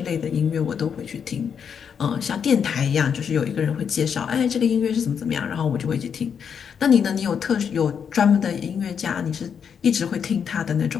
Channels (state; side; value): quieter; right; 7.2 dB